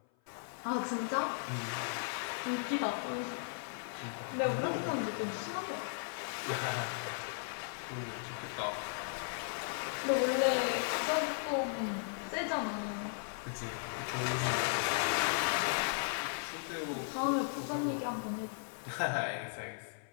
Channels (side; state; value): right; silent; 53 dB below the other